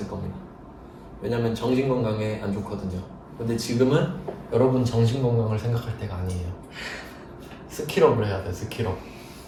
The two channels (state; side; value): identical; both; correlation 1.00